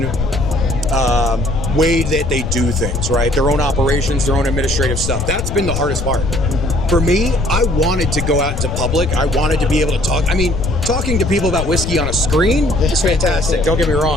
way that they do things, right? Their own operations, their own administrative stuff. That's been the hardest part. For me, I wanted to go out into public. I wanted to be able to talk. I mean, talking to people about whiskey on a screen is fantastic. Don't get me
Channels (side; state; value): left; noise; rumble, 4 dB below the sound